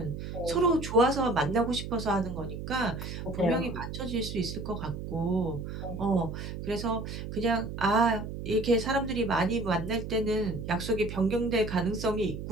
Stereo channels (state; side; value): noise; right; hum, 7 dB below the sound